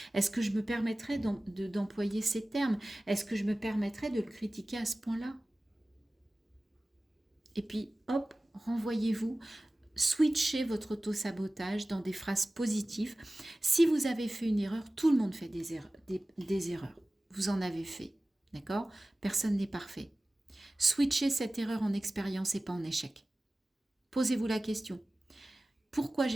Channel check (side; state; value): both; normal; correlation 0.97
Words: Est-ce que je me permettrais d'employer ces termes? Est-ce que je me permettrais de le critiquer à ce point-là? Et puis, hop, renvoyez-vous, switchez votre auto-sabotage dans des phrases positives. Si vous avez fait une erreur, tout le monde fait des erreurs. Vous en avez fait, d'accord? Personne n'est parfait. Switchez cette erreur en expérience et pas en échec. Posez-vous la question. Pourquoi